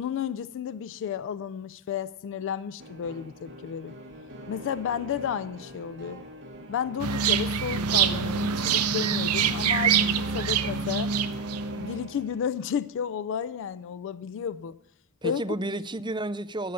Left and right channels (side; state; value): both; normal; correlation 0.06